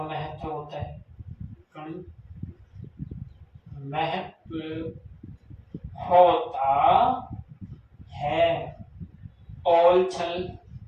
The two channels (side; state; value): both; identical; correlation 1.00